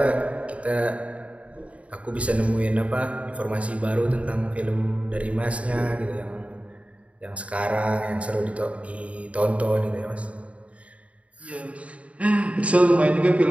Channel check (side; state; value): left; late; 0.065 ms